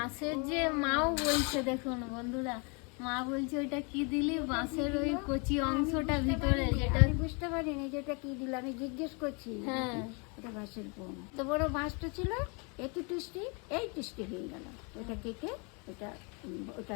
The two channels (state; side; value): quieter; right; 33.2 dB